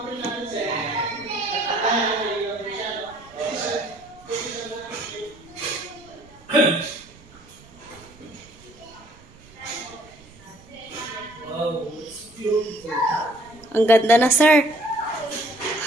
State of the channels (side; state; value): right; noise; rumble, 24 dB below the sound